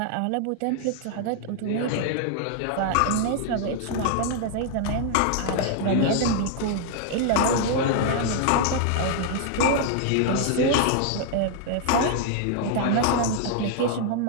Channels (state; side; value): different; both; correlation 0.00